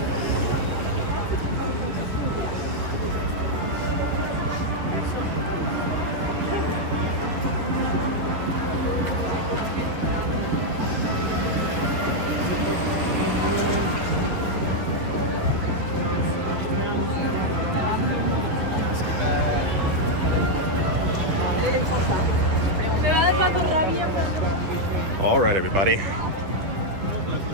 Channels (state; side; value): late; left; 11 ms